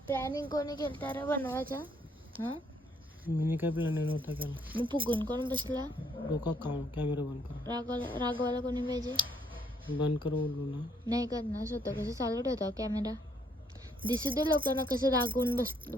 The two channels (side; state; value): both; normal; correlation 0.69